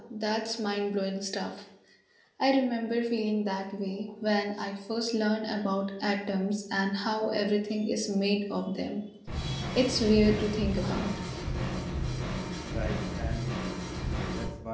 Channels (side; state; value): both; identical; correlation 1.00